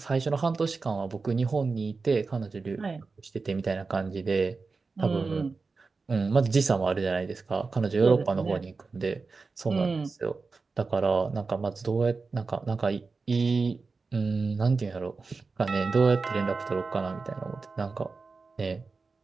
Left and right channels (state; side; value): quieter; left; 4.3 dB